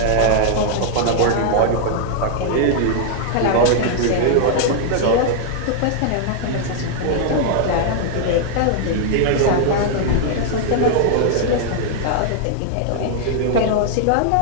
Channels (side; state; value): both; different; correlation 0.00